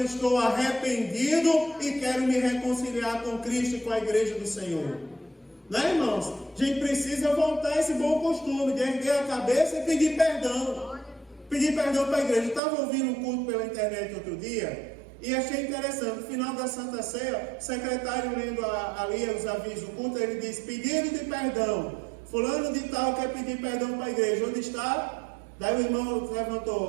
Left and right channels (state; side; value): drops out; left; at 12.6 s